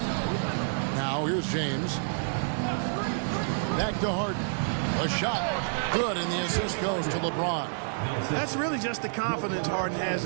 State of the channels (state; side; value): silent; left; digital silence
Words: Now here's James. Back to Harden. A shot. Good, and the assist goes to LeBron. That's really just the confidence Harden has